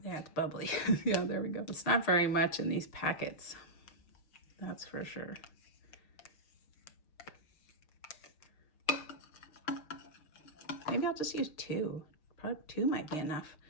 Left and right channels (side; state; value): right; late; 6.6 ms